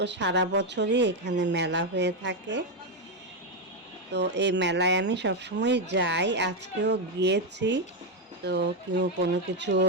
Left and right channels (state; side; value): normal; both; correlation 0.05